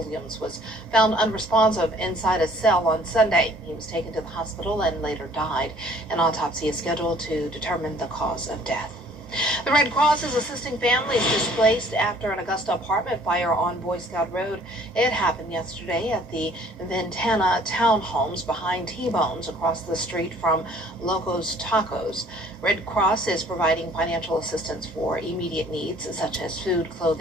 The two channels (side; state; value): both; normal; correlation 0.56